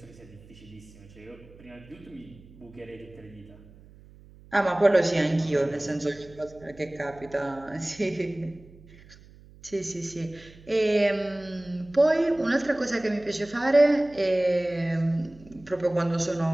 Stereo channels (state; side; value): noise; right; hum, 23 dB below the sound